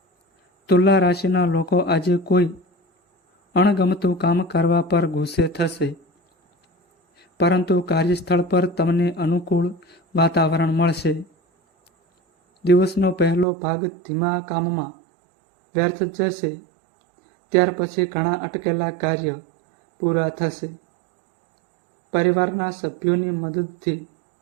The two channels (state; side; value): drops out; left; at 13.5 s